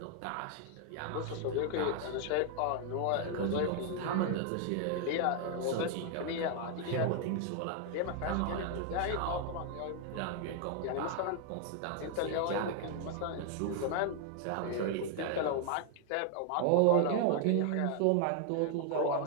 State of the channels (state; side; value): different; both; correlation 0.00